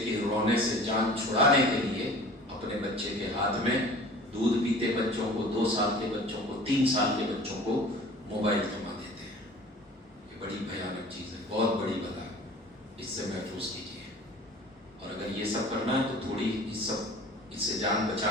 رونے سے جان چھڑانے کے لیے اپنے بچے کے ہاتھ میں دودھ پیتے بچوں کو، 2 سال کے بچوں کو، 3 سال کے بچوں کو موبائل تھما دیتے ہیں۔ یہ بڑی بھیانک چیز ہے، بہت بڑی بلا ہے، اس سے محفوظ کیجیے۔ اور اگر یہ سب کرنا ہے تو تھوڑی اس سے جان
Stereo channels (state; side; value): normal; both; correlation 0.44